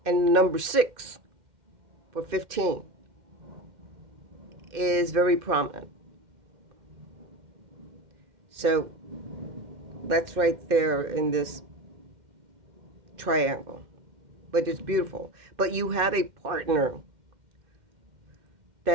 and number 6 for 15 is very prominent. So that's right there in this triangle. But it's beautiful. But you have a partner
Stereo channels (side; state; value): left; late; 2.5 ms